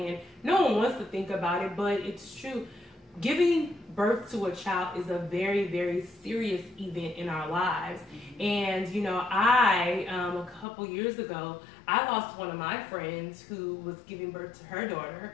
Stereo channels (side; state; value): right; drops out; at 10.7 s